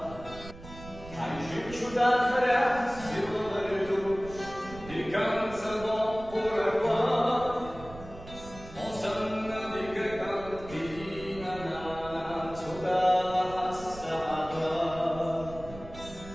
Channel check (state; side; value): noise; right; rumble, 15 dB below the sound